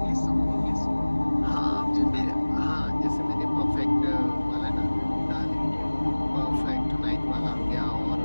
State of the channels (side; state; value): both; inverted; correlation -1.00